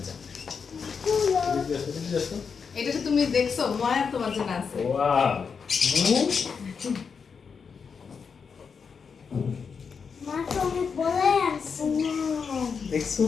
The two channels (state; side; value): quieter; right; 5.9 dB